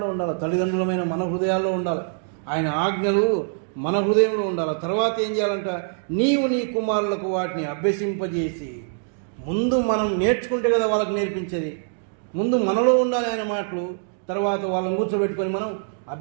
ఉండాలి. తల్లిదండ్రులమైన మన హృదయాల్లో ఉండాలి. ఆయన ఆజ్ఞలు మన హృదయంలో ఉండాలి. తర్వాత ఏం చేయాలంట? నీవు నీ కుమారులకు వాటిని అభ్యసింపజేసి, ముందు మనం నేర్చుకుంటే కదా వాళ్ళకి నేర్పించేది. ముందు మనలో ఉండాలి ఆయన మాటలు, తర్వాత వాళ్ళని కూర్చోబెట్టుకొని మనం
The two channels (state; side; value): silent; left; digital silence